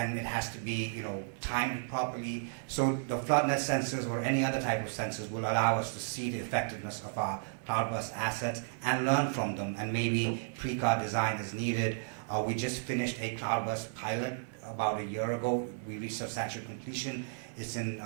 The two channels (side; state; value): left; silent; 55 dB below the other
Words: it has to be, timed properly. So the FloodNet sensors or any other type of sensors will allow us to see the effectiveness of our cloudburst assets and learn from them, and maybe pre-car design is needed. We just finished a cloudburst pilot about a year ago. We reached substantial completion. It's in